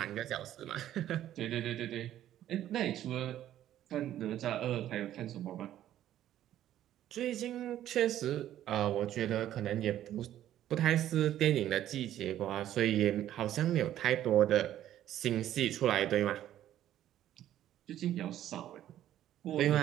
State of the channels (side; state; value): left; quieter; 12.1 dB